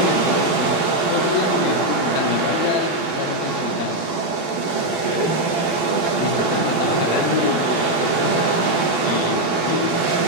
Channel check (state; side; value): late; right; 12 ms